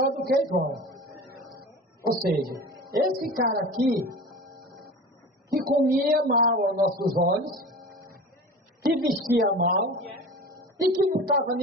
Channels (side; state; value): both; normal; correlation 0.35